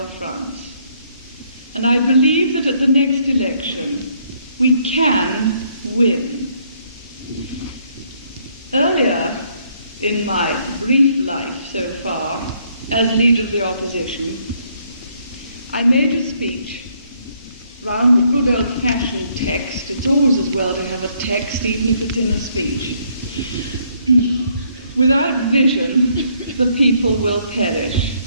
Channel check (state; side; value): inverted; both; correlation -0.69